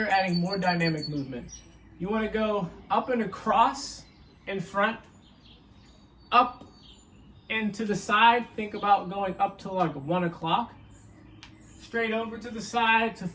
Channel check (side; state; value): both; identical; correlation 1.00